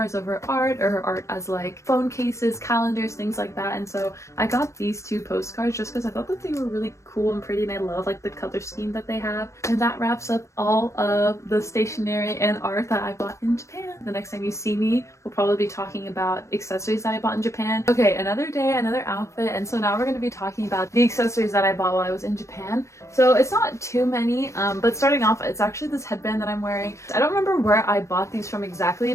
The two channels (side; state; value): right; late; 0.14 ms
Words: of her art, or her art as like phone cases, calendars, things like that. And so I got these two postcards just because I thought that they were really cool and pretty, and I love like the color scheme that they have. And that wraps up all of the stationery and art that I bought in Japan. The next time you see me, we'll probably be talking about accessories that I bought in Japan. Okay, another day, another outfit, and so now we're going to be talking about the accessories that I bought while I was in Japan. So it's not too many, but starting off, it's actually this headband that I'm wearing. I don't remember where I bought these from exactly,